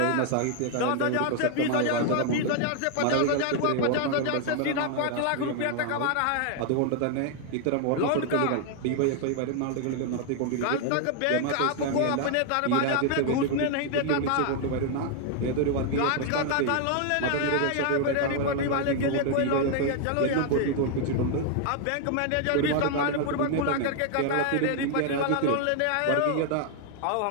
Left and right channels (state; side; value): different; both; correlation 0.00